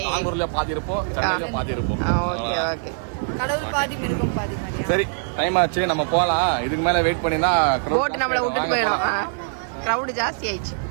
நாகூர்ல பாதி இருப்போம், சென்னையில பாதி இருப்போம். Okay okay. கடவுள் பாதி மிருகம் பாதி மாதிரியா? சரி டைம் ஆச்சு, நம்ம போலாம். இதுக்கு மேல வெயிட் பண்ணினா போட் நம்மள விட்டுட்டு போயிடும். கிரவுட் ஜாஸ்தி ஆயிடுச்சு.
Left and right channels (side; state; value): left; silent; digital silence